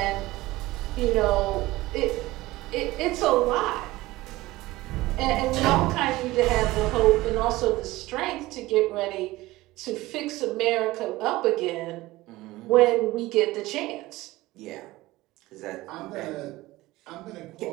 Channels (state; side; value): quieter; left; 18.6 dB